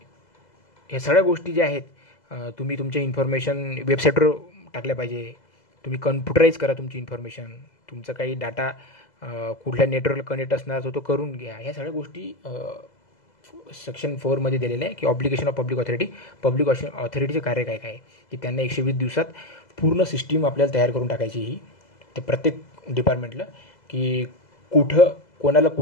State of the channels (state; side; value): late; right; 2.0 ms